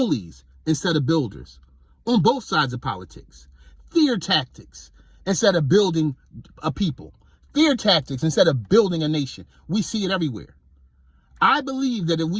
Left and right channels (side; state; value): both; identical; correlation 1.00